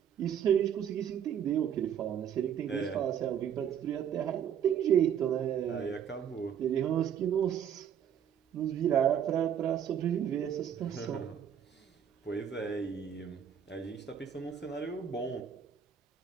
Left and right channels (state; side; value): quieter; left; 8.8 dB